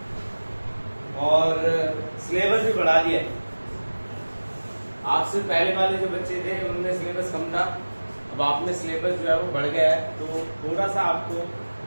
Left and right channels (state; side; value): inverted; both; correlation -1.00